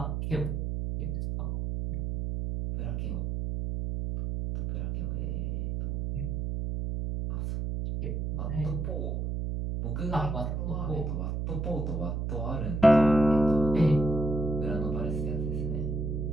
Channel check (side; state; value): right; noise; hum, 2 dB below the sound